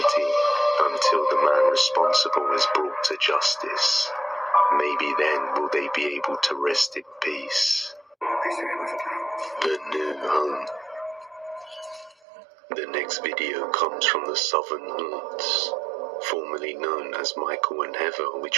until the man responsible is brought to justice. Maybe then will they be able to rest in peace. The new home. The next video comes from the Southern Haunts, formerly known as Michael and Heather,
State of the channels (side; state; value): left; drops out; at 12.2 s